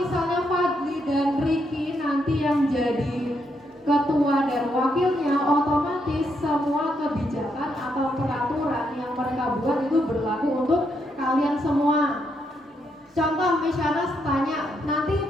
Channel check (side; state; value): both; normal; correlation 0.78